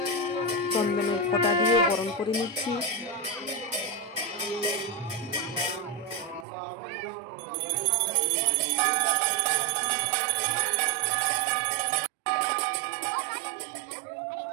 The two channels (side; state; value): left; drops out; at 6.5 s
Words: চন্দনের ফোঁটা দিয়ে বরণ করে নিচ্ছি।